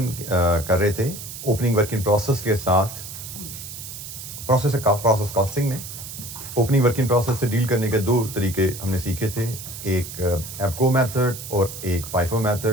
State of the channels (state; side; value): noise; right; hiss, 11 dB below the sound